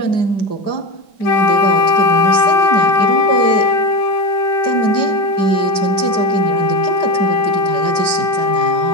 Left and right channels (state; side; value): late; right; 5.0 ms